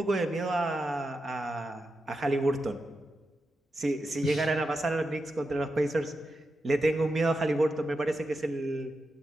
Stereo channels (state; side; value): normal; both; correlation 0.88